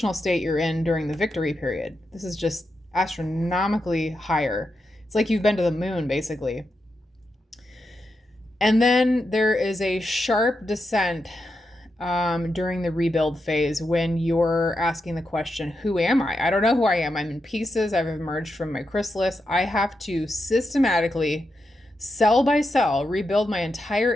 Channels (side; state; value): both; normal; correlation 0.86